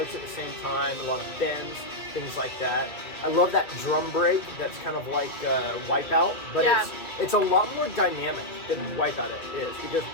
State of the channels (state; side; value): late; right; 2.5 ms